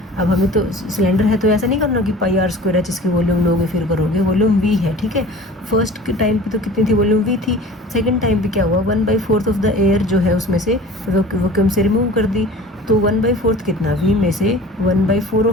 अब हमें तो सिलेंडर है तो ऐसा नहीं करना कि πr² है जिसकी वॉल्यूम लोगे फिर करोगे, वॉल्यूम वी है, ठीक है। फर्स्ट के टाइम पे तो कितनी थी वॉल्यूम वी थी, सेकंड टाइम पे क्या हुआ 1/4 ऑफ द एयर जो है उसमें से वैक्यूम से रिमूव कर दी, तो 1/4 कितना, वी में से 1/4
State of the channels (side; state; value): both; normal; correlation 0.42